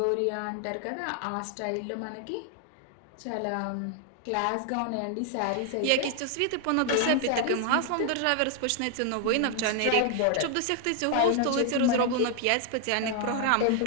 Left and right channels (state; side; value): different; both; correlation 0.00